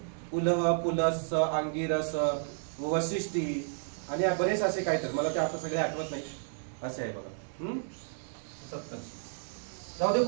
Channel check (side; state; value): left; silent; digital silence